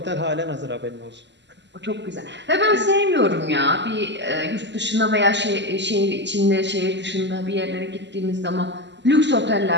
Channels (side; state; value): left; late; 0.52 ms